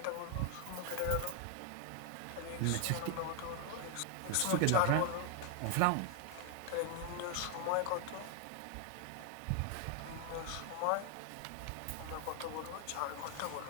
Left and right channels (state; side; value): different; both; correlation 0.00